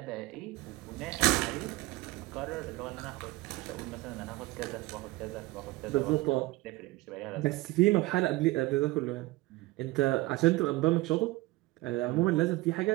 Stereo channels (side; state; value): left; quieter; 20.4 dB